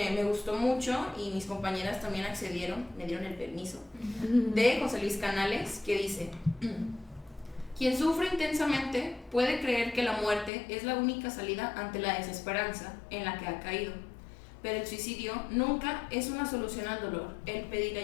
me gustó mucho y mis compañeras también accedieron, me dieron el permiso, de José Luis Canales, que dice: quien sufre intensamente puede creer que la muerte es la única salida ante la desesperanza en la que ha caído, pero el suicidio nunca es una solución al dolor. El pedir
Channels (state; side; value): drops out; right; at 10.5 s